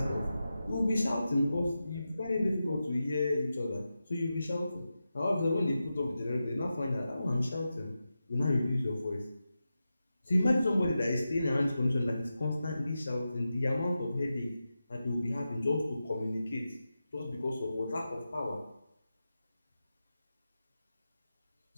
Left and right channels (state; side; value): inverted; both; correlation -0.91